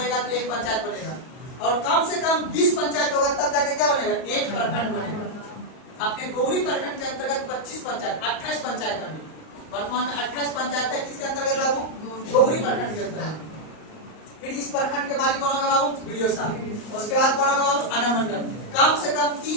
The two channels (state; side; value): late; right; 38 ms